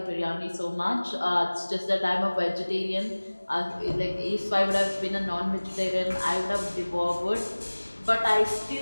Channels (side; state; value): both; inverted; correlation -1.00